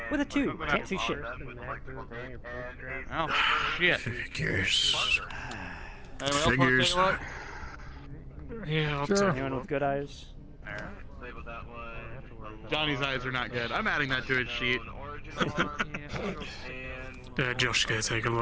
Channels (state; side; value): identical; both; correlation 1.00